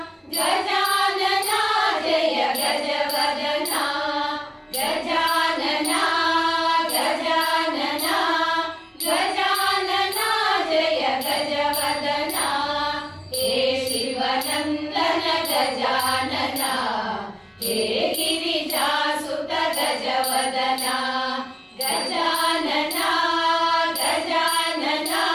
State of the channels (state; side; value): identical; both; correlation 1.00